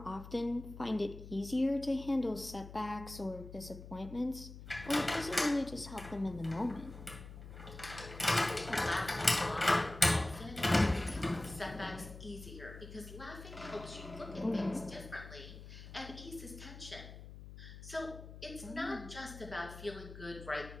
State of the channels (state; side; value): noise; left; hum, 13 dB below the sound